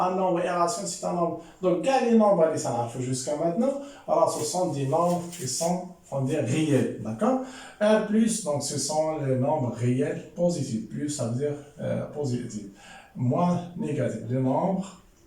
un nombre irrationnel c'est un nombre, donc quand les nombres les ça jusqu'à maintenant, alors ce sont des nombres qui sont on dit réels, d'accord. Un plus donc ce sont les nombres réels positifs, plus ça veut dire positif, moins négatif, les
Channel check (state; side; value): identical; both; correlation 1.00